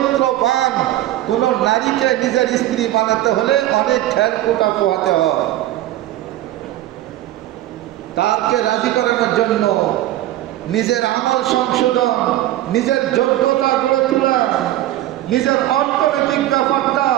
কোন নারীকে নিজের স্ত্রী বানাতে হলে অনেক খেলকুটা পোহাতে হয়। তাকে রাজি করানোর জন্য নিজের আমল সংশোধন, নিজের যোগ্যতা গড়ে তোলা, নিজের অর্থনৈতিক ব্যাপারটা,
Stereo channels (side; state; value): left; quieter; 14.6 dB